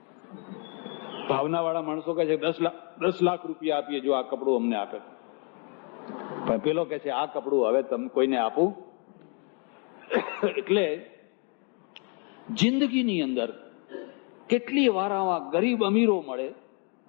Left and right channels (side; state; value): right; quieter; 36.7 dB